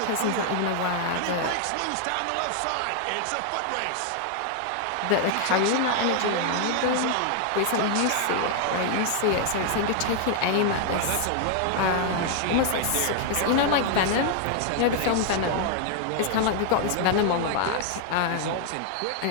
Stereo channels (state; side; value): different; both; correlation 0.00